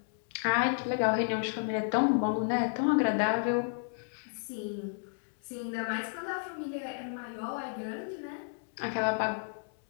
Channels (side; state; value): right; silent; digital silence